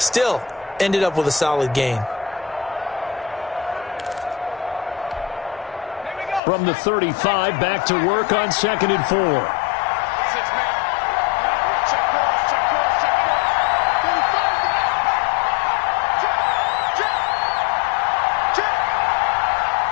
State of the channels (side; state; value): right; drops out; at 6.4 s